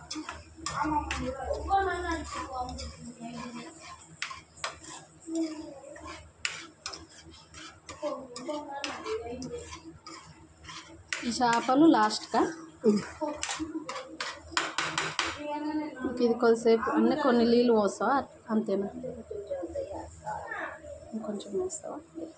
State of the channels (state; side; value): identical; both; correlation 1.00